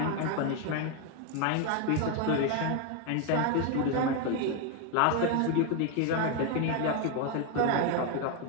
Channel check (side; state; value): both; different; correlation 0.01